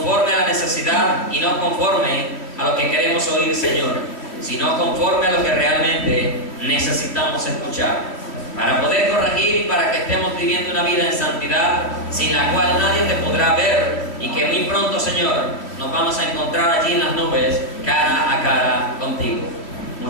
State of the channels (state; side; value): late; right; 3.0 ms